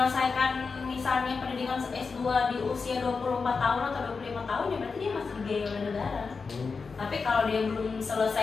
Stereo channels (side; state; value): right; quieter; 4.8 dB